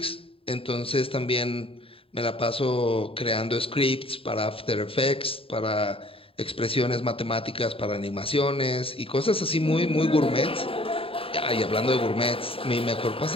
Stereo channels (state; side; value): late; right; 0.27 ms